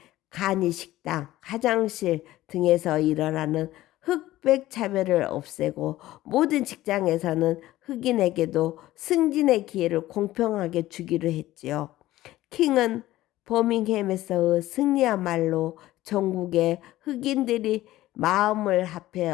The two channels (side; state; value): right; quieter; 15.8 dB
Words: 간이 식당, 화장실 등에서 일어나는 흑백 차별을 없애고 모든 직장에서는 흑인에게도 승진의 기회를 공평하게 주기로 했지요. 킹은 버밍햄에서의 승리야말로 전국의 흑인들이 마음을